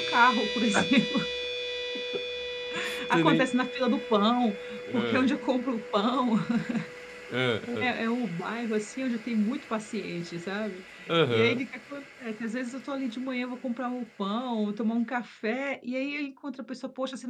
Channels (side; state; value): both; identical; correlation 1.00